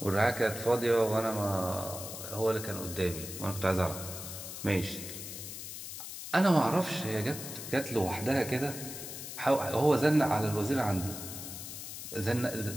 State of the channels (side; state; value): left; noise; hiss, 9 dB below the sound